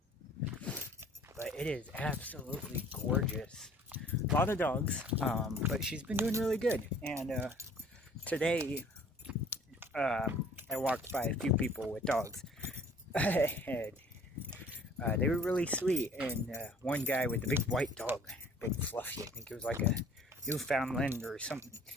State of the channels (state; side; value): normal; both; correlation 0.53